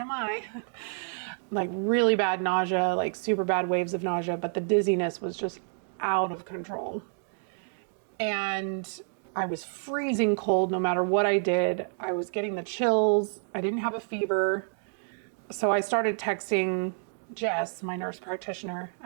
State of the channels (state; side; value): silent; left; 59 dB below the other